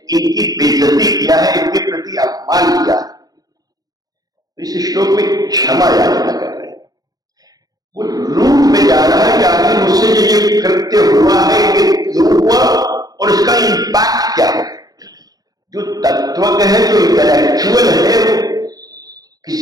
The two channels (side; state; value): left; late; 0.18 ms